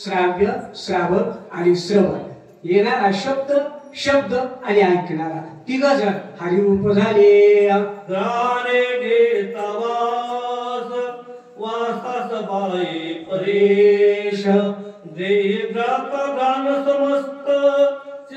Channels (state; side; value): identical; both; correlation 1.00